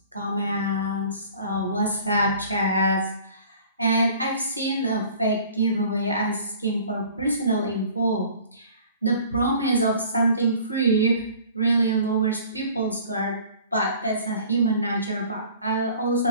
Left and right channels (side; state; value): both; inverted; correlation -0.49